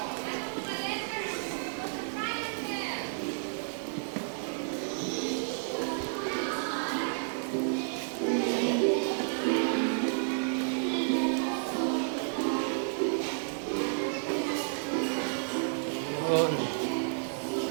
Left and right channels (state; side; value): silent; left; 56 dB below the other